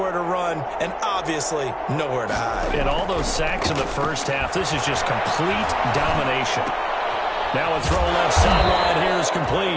to run, and obviously nowhere to hide. And all those sacks in the first half, this is just complete domination. Now a throw left sideline here is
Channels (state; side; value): identical; both; correlation 1.00